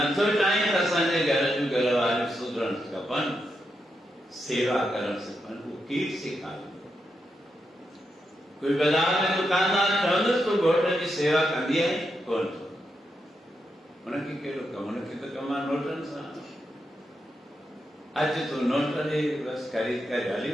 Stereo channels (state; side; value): normal; both; correlation 0.85